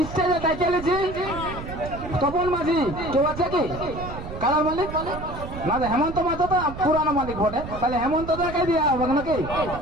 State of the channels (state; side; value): noise; right; rumble, 10 dB below the sound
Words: স্টেজে ডেকে নিয়েছি। তপন মাঝি কেউ আছে কি কালার মালিক? না, হেমন্ত মাঝি তো পুরানো মালিক বটে, তাহলে হেমন্ত দাকে দেওয়া হবে নাকি?